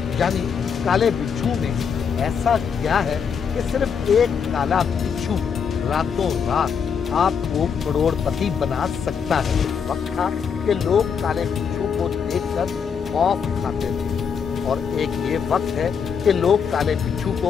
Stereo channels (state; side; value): quieter; right; 6.7 dB